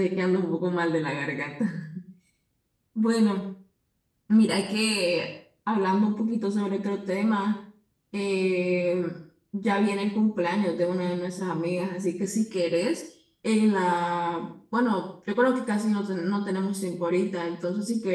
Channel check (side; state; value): both; identical; correlation 1.00